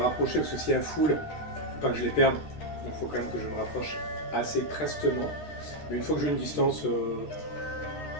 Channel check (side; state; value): right; late; 13 ms